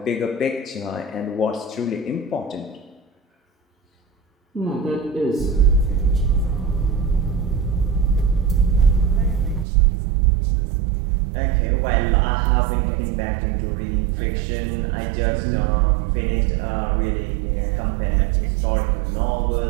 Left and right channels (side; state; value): left; drops out; at 9.7 s